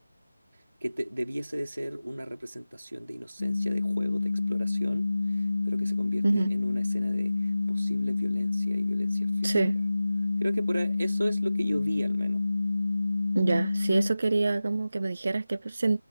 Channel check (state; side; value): inverted; both; correlation -0.96